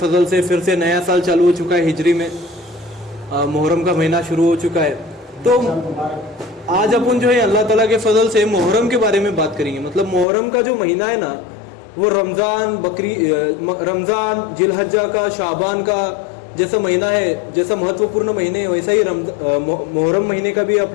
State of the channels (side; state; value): right; drops out; at 10.2 s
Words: से फिर से नया साल चालू हो चुका है हिजरी में, मुहर्रम का महीना शुरू हो चुका है। तो आज अपन जो है अल्लाह ताला के फजल से मुहर्रम के बारे में बात करेंगे। मतलब मुहर्रम का जो महीना है ना, वो रमज़ान जिलहज्जा का, शाबान का जैसा महीना है, जैसा महत्वपूर्ण महीने है, वैसा ही मुहर्रम महीने का भी